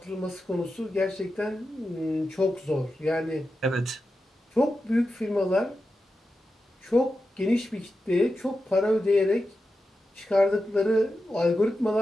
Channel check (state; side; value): normal; both; correlation 0.90